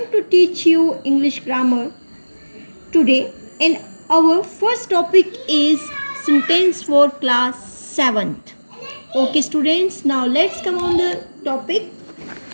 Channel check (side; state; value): both; inverted; correlation -1.00